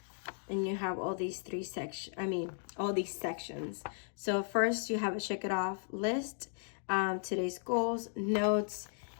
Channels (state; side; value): silent; right; digital silence